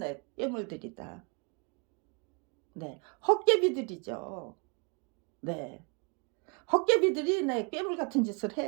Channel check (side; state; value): left; quieter; 34.2 dB